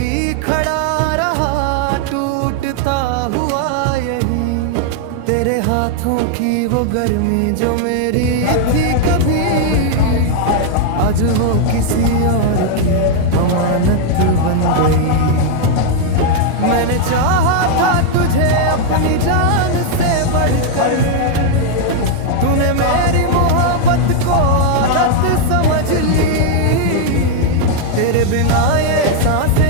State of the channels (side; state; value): both; different; correlation 0.00